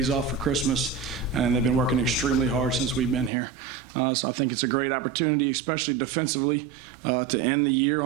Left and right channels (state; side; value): drops out; left; at 3.3 s